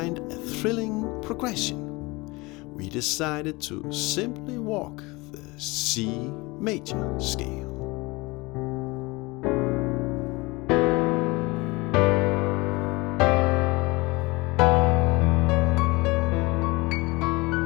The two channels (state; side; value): quieter; right; 24.0 dB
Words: a thrilling progression. We decided to simply walk the C major scale.